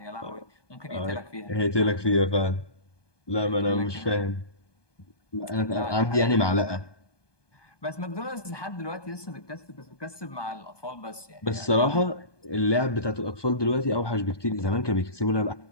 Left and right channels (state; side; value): late; right; 1.2 ms